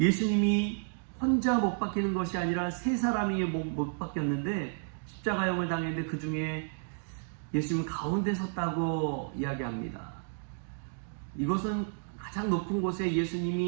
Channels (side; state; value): left; silent; digital silence